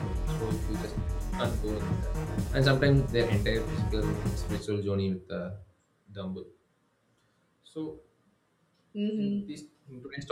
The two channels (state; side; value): identical; both; correlation 1.00